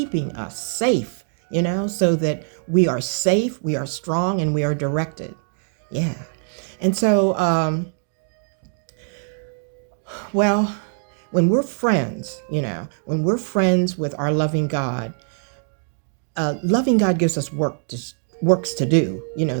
us safe, so that we are safe, we are strong, and we are directed. Yeah. And so, well, when we're friends, when we're friends with our loving God gives us works to do,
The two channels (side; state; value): left; silent; 57 dB below the other